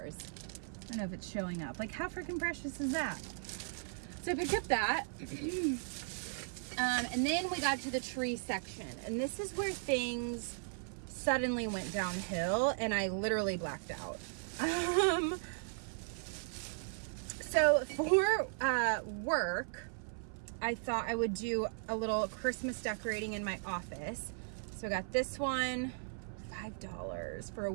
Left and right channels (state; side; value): silent; left; 53 dB below the other